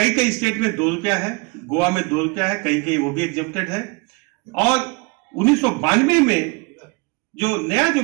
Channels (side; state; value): left; quieter; 28.2 dB